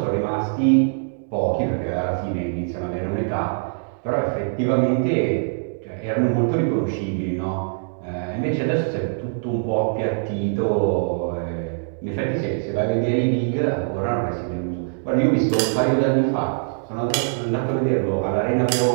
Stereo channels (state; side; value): silent; left; digital silence